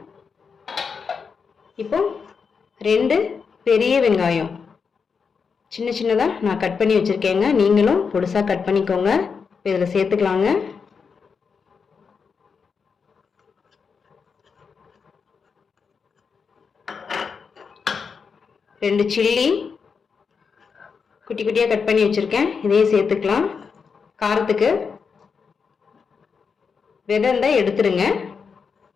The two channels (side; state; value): right; quieter; 5.7 dB